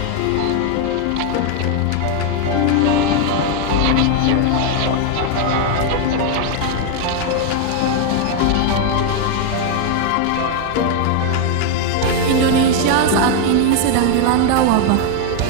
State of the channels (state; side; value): different; both; correlation 0.00